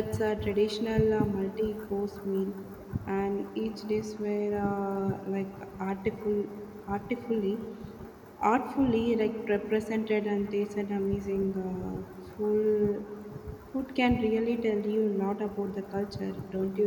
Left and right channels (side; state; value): both; identical; correlation 1.00